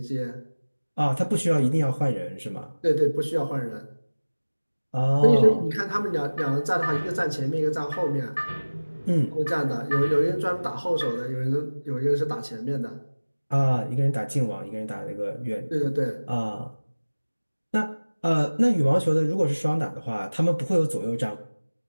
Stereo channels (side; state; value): both; inverted; correlation -1.00